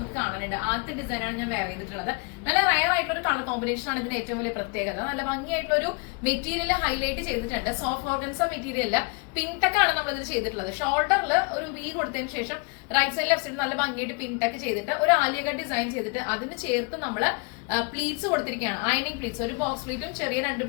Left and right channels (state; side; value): quieter; right; 32.6 dB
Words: കാണാനുണ്ട്. ആദ്യത്തെ ഡിസൈനാണ് ഞാൻ വെയർ ചെയ്തിട്ടുള്ളത്. നല്ല റയർ ആയിട്ടുള്ള ഒരു കളർ കോമ്പിനേഷൻ ആണ് ഇതിന്റെ ഏറ്റവും വലിയ പ്രത്യേകത. നല്ല ഭംഗിയായിട്ടുള്ള ഒരു മെറ്റീരിയൽ ഹൈലൈറ്റ് ചെയ്തിട്ടുണ്ട്. Soft organza material pink tech ആണ് നമ്മൾ ഇതിൽ ചെയ്തിട്ടുള്ളത്. ഷോൾഡറിൽ ഒരു വി കൊടുത്തതിന് ശേഷം റൈറ്റ് സൈഡ് ലെഫ്റ്റ് സൈഡ് നല്ല ഭംഗിയായിട്ട് പിങ്ക് ടെക്ക് ചെയ്തിട്ട് ഒരു ആലിയ കട്ട് ഡിസൈൻ ചെയ്തിട്ട് അതിന് ചേർത്ത് നമ്മൾ പ്ലീറ്റ്സ് കൊടുത്തിരിക്കുകയാണ്. അയണിംഗ് പ്ലീറ്റ്സ്, ഒരു ബോക്സ് പ്ലീറ്റും ചെറിയ 2